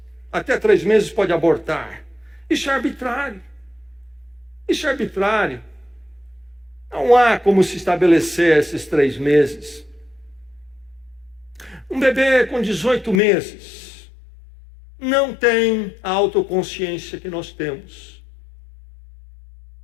até 3 meses pode abortar. Isso é arbitrário. Isso é arbitrário. Não há como se estabelecer esses 3 meses. Um bebê com 18 meses não tem a autoconsciência que nós temos.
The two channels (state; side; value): drops out; right; at 13.2 s